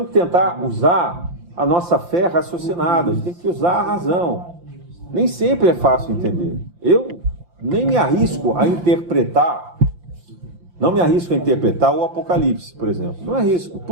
que tentar usar a nossa fé raciocinada, a gente tem que usar a razão. Nem sempre é fácil entender. Eu nem me arrisco a interpretar, não me arrisco a interpretar o Apocalipse, por exemplo. Não arrisco.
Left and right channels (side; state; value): left; late; 5.8 ms